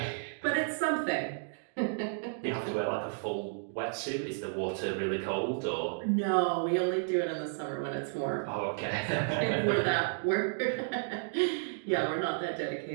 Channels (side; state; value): left; silent; digital silence